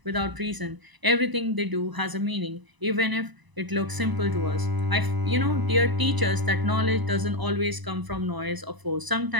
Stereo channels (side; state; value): left; late; 1.0 ms